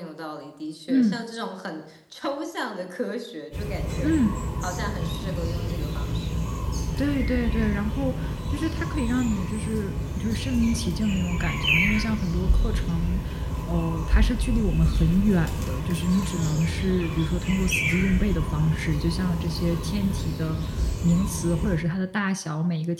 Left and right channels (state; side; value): identical; both; correlation 1.00